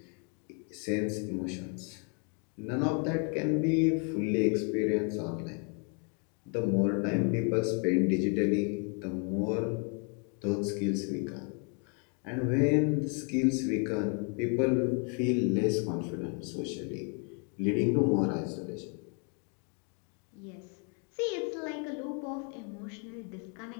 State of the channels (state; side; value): quieter; right; 39.0 dB